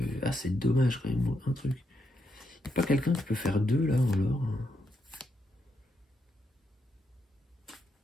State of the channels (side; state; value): both; normal; correlation 0.80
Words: Ah, c'est dommage quand même, un truc. Il n'y a pas quelqu'un qui peut faire 2, là, en l'or.